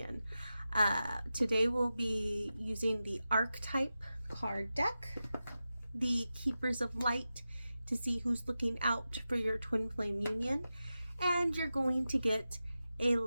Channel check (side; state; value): both; inverted; correlation -0.93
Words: Today we'll be using the archetype card deck, the Keepers of Light, to see who's looking out for your Twin Flame union, and you're going to get a